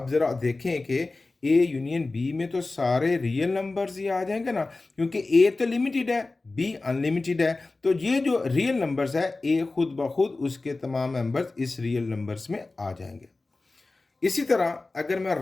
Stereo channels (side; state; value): right; quieter; 3.4 dB